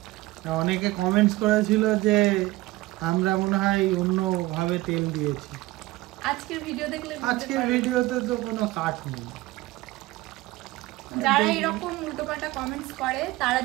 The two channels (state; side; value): quieter; left; 19.1 dB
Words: অনেকে কমেন্টস করেছিল যে আমরা মনে হয় অন্যভাবে তেল দিয়েছি। আজকের ভিডিও দেখলে আজকের ভিডিওতে তো কোনো কাট নেই। যারা এরকম উল্টোপাল্টা কমেন্টস করে তারা